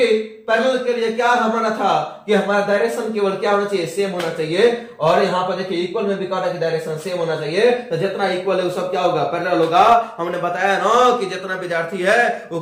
पैरेलल के लिए क्या हमारा था कि हमारा डायरेक्शन केवल क्या होना चाहिए, सेम होना चाहिए। और यहाँ पर देखिए इक्वल में भी कहा था कि डायरेक्शन सेम होना चाहिए। तो जितना इक्वल है वो सब क्या होगा, पैरेलल होगा। हमने बताया ना कि जितना विद्यार्थी है वो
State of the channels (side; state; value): both; identical; correlation 1.00